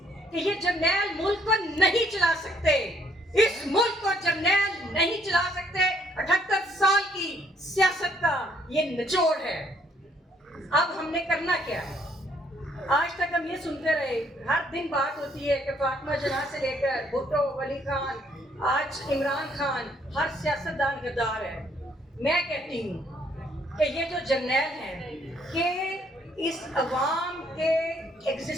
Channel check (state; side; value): normal; both; correlation 0.67